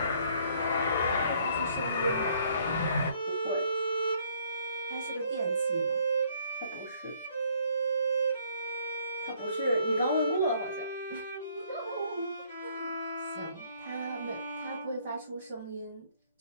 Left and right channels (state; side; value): inverted; both; correlation -0.63